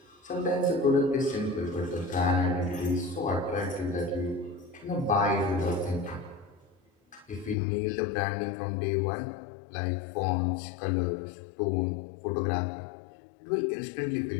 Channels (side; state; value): right; drops out; at 7.6 s